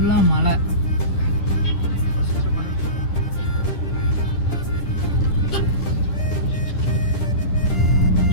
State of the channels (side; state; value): right; late; 10 ms